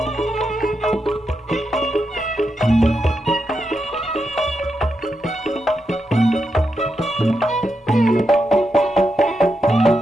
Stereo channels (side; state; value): both; normal; correlation 0.85